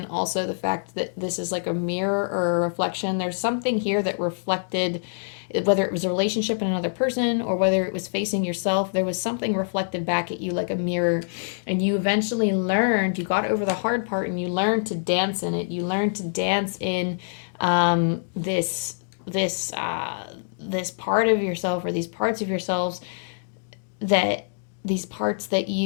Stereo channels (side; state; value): right; silent; digital silence